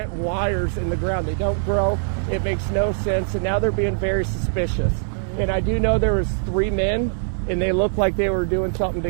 wires in the ground. They don't grow. It makes no sense. And now they're being very suspicious. And I do know there was 3 men, and they looked like they were doing something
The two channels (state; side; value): silent; left; 64 dB below the other